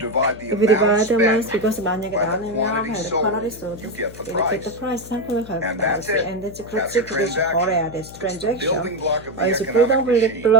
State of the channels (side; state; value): left; noise; hum, 17 dB below the sound